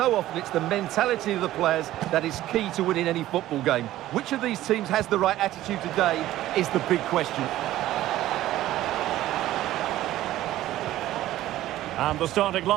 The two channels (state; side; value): quieter; left; 14.6 dB